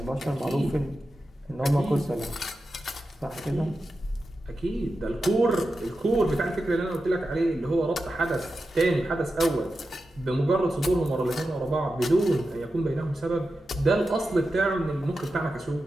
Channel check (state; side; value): normal; both; correlation 0.91